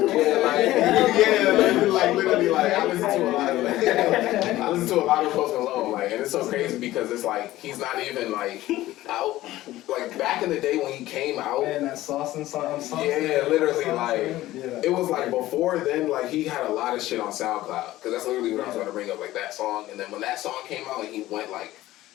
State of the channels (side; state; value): right; quieter; 15.9 dB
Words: Like literally, like I listen to a lot of Post Malone, like, and it's so crazy because it's like he's not even like out. Like back in the day when he came out, man, that sauce and sauce. Yeah, literally, like it was like before then, like he had a lot of shit on SoundCloud, because that's literally what I was going to bring up, like that song. And then when that song came out and he went like.